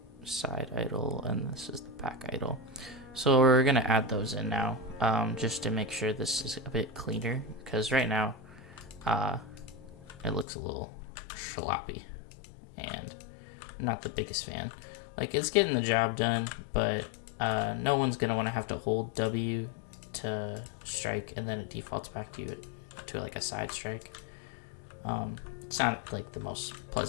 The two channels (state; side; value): drops out; right; at 10.5 s